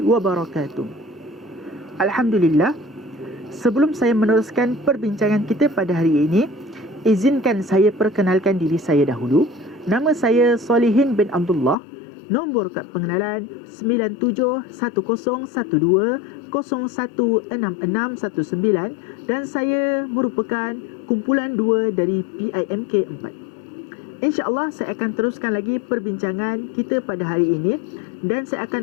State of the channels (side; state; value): right; drops out; at 11.8 s